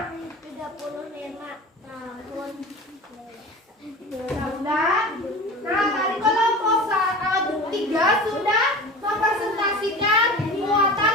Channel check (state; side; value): normal; both; correlation 0.35